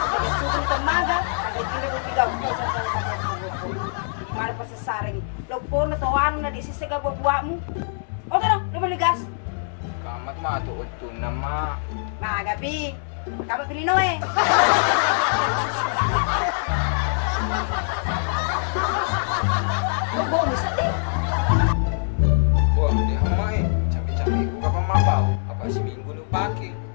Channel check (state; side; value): silent; right; digital silence